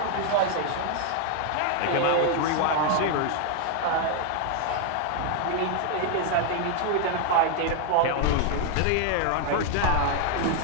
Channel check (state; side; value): different; both; correlation 0.00